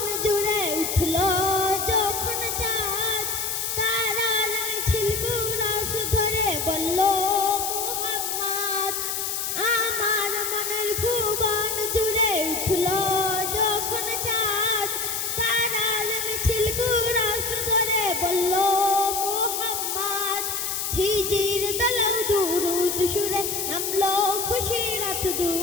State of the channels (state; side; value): noise; left; hiss, 2 dB below the sound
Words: जुड़े उठलो যখন চাঁদ, তারার মিছিল কুরাস ধরে বলল মুহাম্মদ। আমার মনের ভুবন জুড়ে উঠলো যখন চাঁদ, তারার মিছিল কুরাস ধরে বলল মুহাম্মদ। ঝিঝির দলৌ দুরুদ সুরে নামলো খুশি রাত